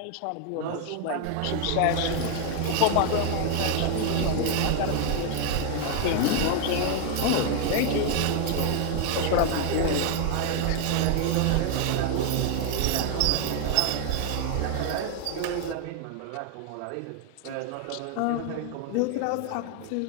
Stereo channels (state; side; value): different; both; correlation 0.00